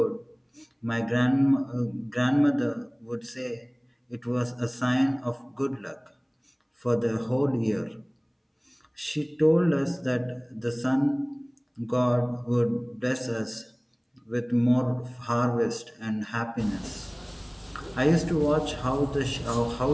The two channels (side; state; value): both; identical; correlation 1.00